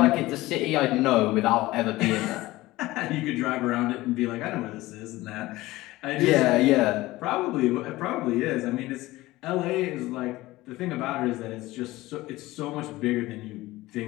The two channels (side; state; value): right; quieter; 18.4 dB